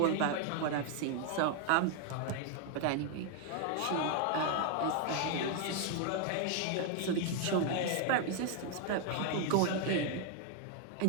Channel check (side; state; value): both; different; correlation 0.00